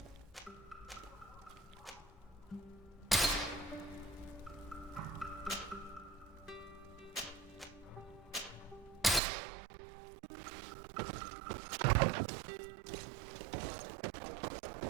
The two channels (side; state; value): left; drops out; at 9.2 s